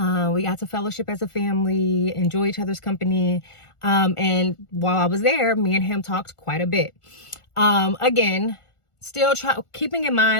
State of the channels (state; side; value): late; right; 1.4 ms